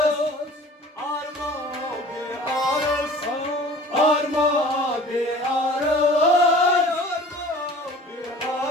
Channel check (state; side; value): normal; both; correlation 0.44